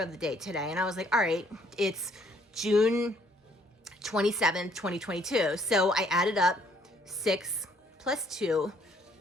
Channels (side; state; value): both; normal; correlation 0.64